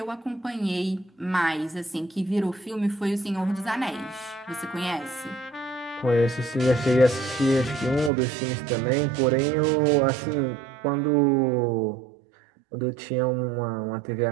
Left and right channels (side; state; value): left; drops out; at 8.1 s